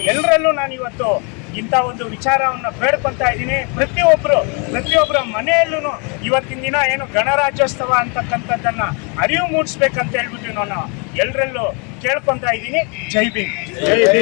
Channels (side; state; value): right; quieter; 33.9 dB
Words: ಎಲ್ಲರಲ್ಲೂ ಇವತ್ತು ಇಂಥ ಒಂದು ವಿಚಾರವನ್ನು ಬೇಡ್ಕೊತಾ ಇದ್ದೀನಿ. ಪ್ರತಿಯೊಬ್ಬರ ಮನೆಯಲ್ಲೂ ಇವತ್ತಿನ ದಿನ ಏನು ಗಣರಾಜ್ಯೋತ್ಸವ ಅಂತಕ್ಕಂಥದ್ದನ್ನು ಅರಿವು ಮೂಡಿಸ್ಬೇಕಂತ ಹೇಳ್ಬಿಟ್ಟು ನಾನು ಎಲ್ಲರಲ್ಲೂ ಕೇಳ್ಕೊತಾ ಇದ್ದೀನಿ. ಜೈ ಭೀಮ್. ಜೈ